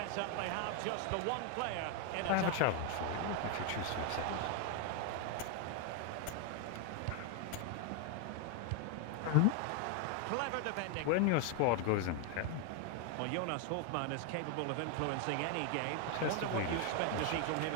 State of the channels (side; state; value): both; different; correlation 0.00